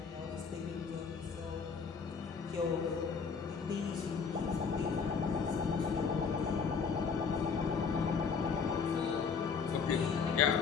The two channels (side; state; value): right; quieter; 5.7 dB